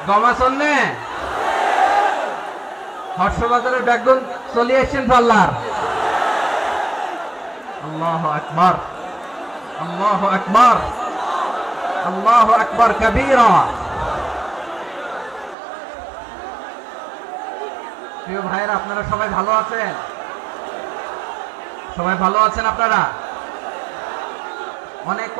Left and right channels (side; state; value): left; drops out; at 15.6 s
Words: গমাছন নে হর্ষবাজারের বেগুন চলে আসছেন পাল্লার। আল্লাহু আকবার, আল্লাহু আকবার, আল্লাহু আকবার কবীরা। প্রিয় ভাইরা, আপনারা সবাই ভালো আছেন? সবাই ভালো আছেন? আপনারা অনেক